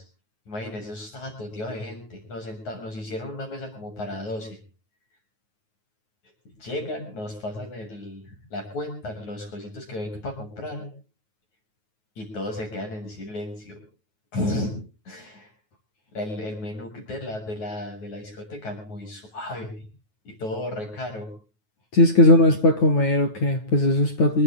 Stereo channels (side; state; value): right; late; 9.4 ms